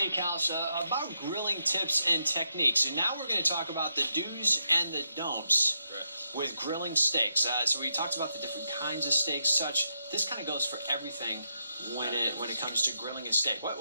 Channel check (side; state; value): both; inverted; correlation -0.82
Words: about grilling tips and techniques. And now we're going to talk about the do's and the don'ts with grilling steaks. So we talked about the different kinds of steaks, such. This kind of goes for everything when it comes to grilling a steak.